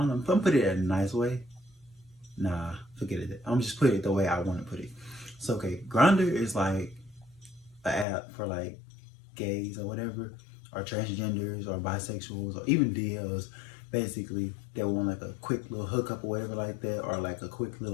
gonna put it in a nice way. Nah, forget it. I'm just put it the way I want to put it. So okay, Grindr is like an app for like gays or whatever, or transgenders or bisexuals or even DLs, basically that want like a quick little hookup or whatever like that, or like a quick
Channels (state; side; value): drops out; right; at 8.1 s